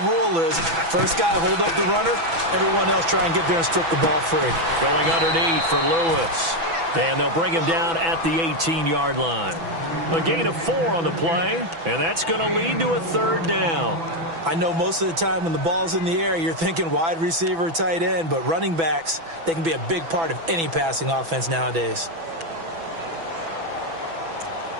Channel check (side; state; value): left; late; 6.0 ms